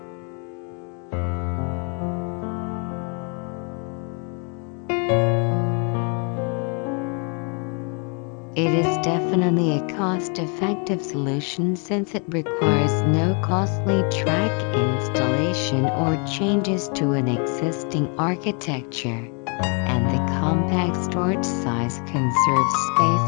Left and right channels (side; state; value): right; quieter; 36.7 dB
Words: It is definitely a cost-effective solution since it requires no costly track installation or changes to an existing architecture. And the compact storage size conserves space